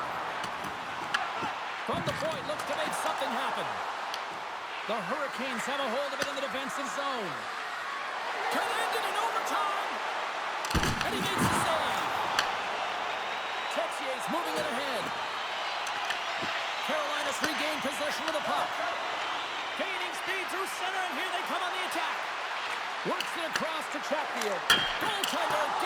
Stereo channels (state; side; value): identical; both; correlation 1.00